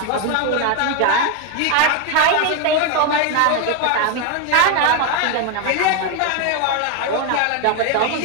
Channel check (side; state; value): both; different; correlation 0.01